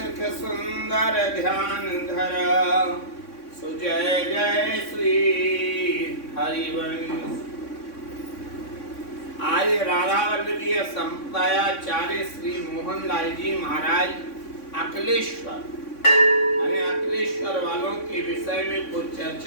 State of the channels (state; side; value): late; right; 3.6 ms